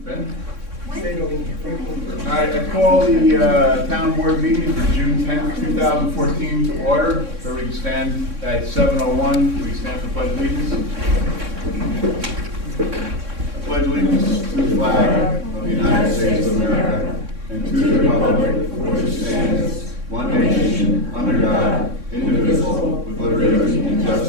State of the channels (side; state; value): left; late; 3.6 ms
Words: Ben? All right, I call the town board meeting for June 10th, 2014 to order. So we can stand at 7:01. We stand for pledge allegiance. I pledge allegiance to the flag of the United States of America and to the republic for which it stands, one nation, under God, indivisible, with liberty and